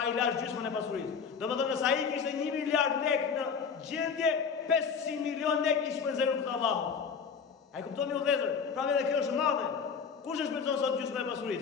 i lash gjysmën e pasurisë. Domethënë se ai kishte 1 miliard lekë në gjendje, 500 milion lekë i shpenzoi për Allahun. Ai kuptoni u vëllezër, pra edhe kjo është madhe. Kush e shpenzon sot gjysmën e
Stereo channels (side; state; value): right; quieter; 6.1 dB